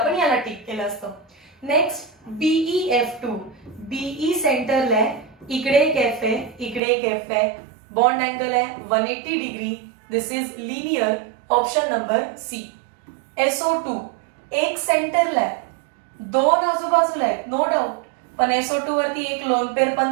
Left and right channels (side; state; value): left; drops out; at 6.8 s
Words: याला टिक केलं असतं. Next BeF2. BE सेंटरला आहे. इकडे एक F आहे, इकडे एक F आहे. बॉन्ड अँगल आहे 180 degree. This is linear. Option number C. SO2 एक सेंटरला आहे, 2 आजूबाजूला आहेत नो डाऊट, पण SO2 वरती एक लोन पेअर